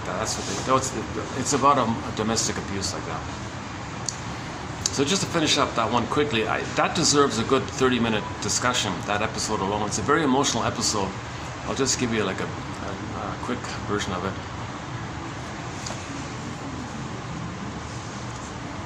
that. That's what it's about a domestic abuse like that. So just to finish up that one quickly, that deserves a good 30-minute discussion, that episode alone. It's a very emotional episode. I'll just give you like a quick version of it.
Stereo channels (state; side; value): identical; both; correlation 1.00